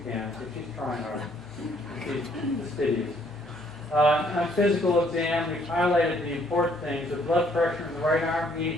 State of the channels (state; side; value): normal; both; correlation 0.65